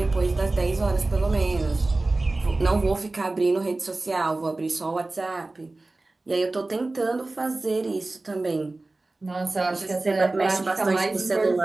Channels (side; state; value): left; quieter; 3.1 dB